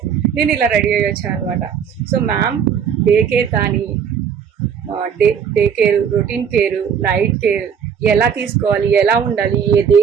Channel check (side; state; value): left; quieter; 7.4 dB